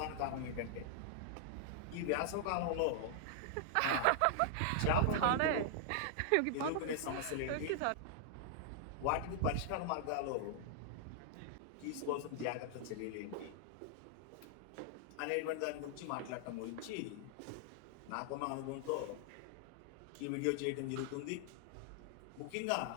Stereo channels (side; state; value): both; different; correlation -0.01